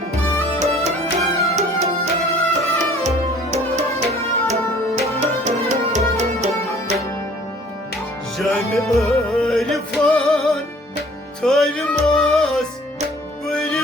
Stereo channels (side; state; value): both; normal; correlation 0.53